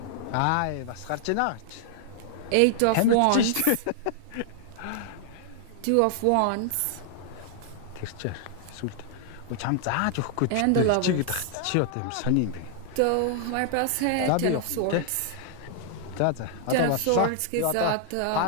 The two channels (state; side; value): different; both; correlation -0.01